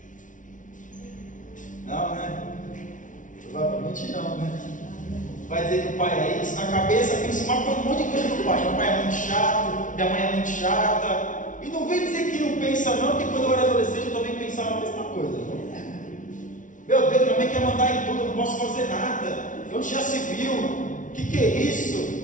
Não, né? Provavelmente não, né? Vai dizer que o pai é isso, na cabeça pensa um monte de coisa do pai. Meu pai é muito chato, minha mãe é muito chata. E não vem dizer que não pensa não, porque quando eu era adolescente eu também pensava a mesma coisa. Meu Deus, minha mãe quer mandar em tudo, eu não posso fazer nada. Onde já se viu? O que é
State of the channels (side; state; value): right; late; 0.37 ms